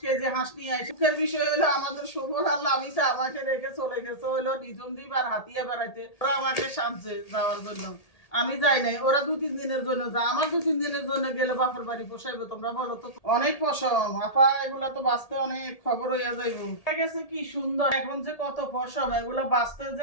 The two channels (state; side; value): late; right; 1.8 ms